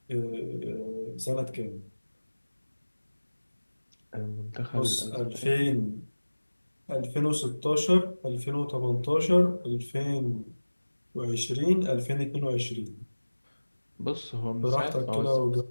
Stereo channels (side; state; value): both; inverted; correlation -1.00